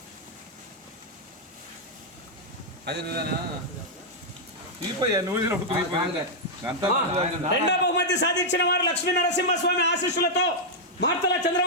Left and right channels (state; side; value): normal; both; correlation -0.05